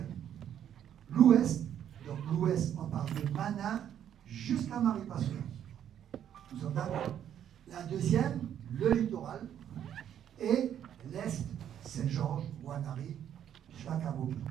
L'ouest, donc l'ouest, on parle de Mana jusqu'à Maripasoula. Nous sommes d'accord. La deuxième, le littoral, et l'est, Saint-Georges, Ouanari, jusqu'à Kabobi.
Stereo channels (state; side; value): quieter; left; 9.9 dB